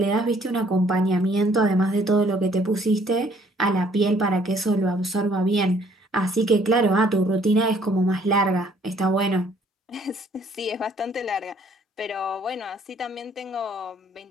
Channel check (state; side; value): normal; both; correlation 0.61